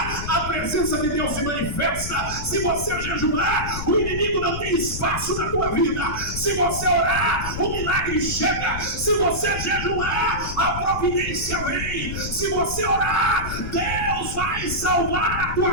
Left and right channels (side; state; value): left; noise; rumble, 7 dB below the sound